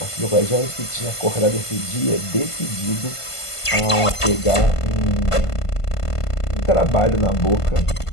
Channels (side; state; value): right; late; 1.5 ms